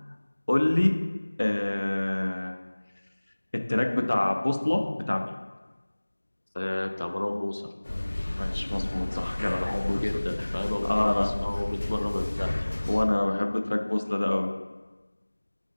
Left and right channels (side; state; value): both; inverted; correlation -1.00